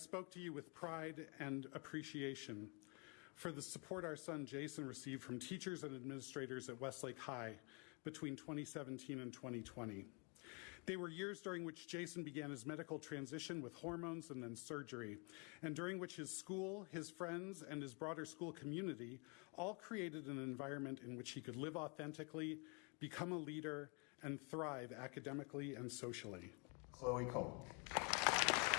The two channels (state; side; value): quieter; right; 33.2 dB